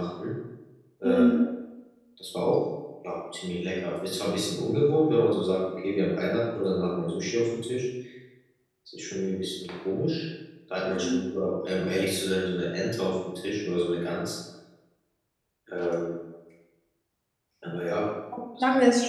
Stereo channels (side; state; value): both; identical; correlation 1.00